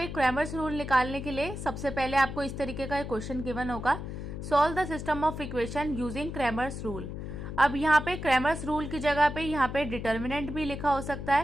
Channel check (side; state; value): left; noise; hum, 7 dB below the sound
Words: क्रैमर्स रूल निकालने के लिए सबसे पहले आपको इस तरीके का एक क्वेश्चन गिवन होगा, solve the system of equation using Cramer's rule. अब यहाँ पे क्रैमर्स रूल की जगह पे यहाँ पे डिटर्मिनेंट भी लिखा हो सकता